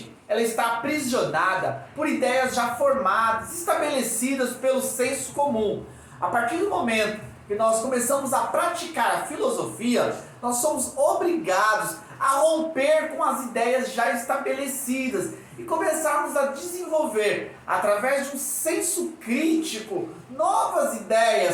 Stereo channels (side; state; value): both; identical; correlation 1.00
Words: ela está aprisionada por ideias já formadas, estabelecidas pelo senso comum. A partir do momento que nós começamos a praticar a filosofia, nós somos obrigados a romper com as ideias já estabelecidas e começarmos a desenvolver, através de um senso crítico, novas